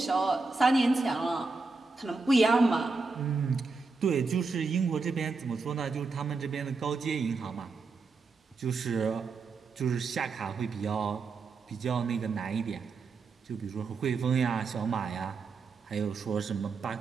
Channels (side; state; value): left; quieter; 4.2 dB